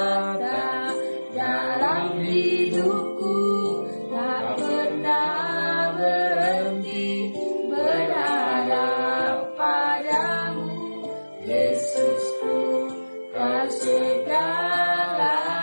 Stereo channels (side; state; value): both; inverted; correlation -1.00